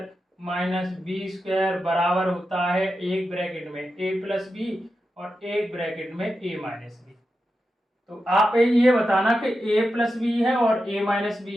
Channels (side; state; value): both; normal; correlation 0.90